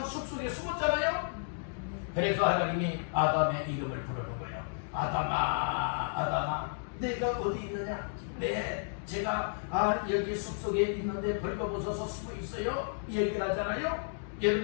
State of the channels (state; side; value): silent; right; digital silence